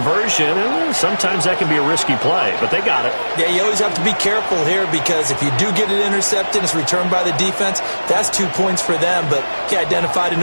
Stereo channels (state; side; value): inverted; both; correlation -1.00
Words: And sometimes that can be a risky play, but they got it. Yeah, you always have to be careful here because if you do get it intercepted, it's returned by the defense. That's 2 points for them, but he identified an